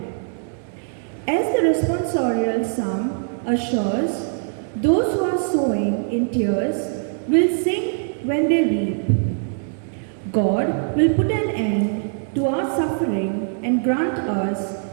As the responsorial psalm assures, those who are sowing in tears will sing when they reap. God will put an end to our suffering and grant us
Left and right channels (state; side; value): silent; left; digital silence